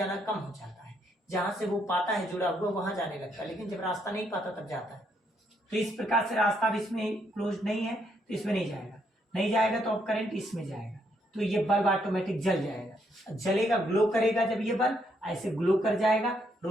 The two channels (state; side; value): normal; both; correlation 0.74